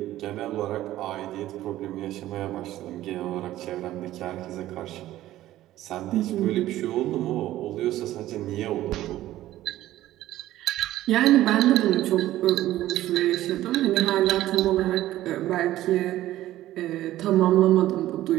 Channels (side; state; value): left; quieter; 14.6 dB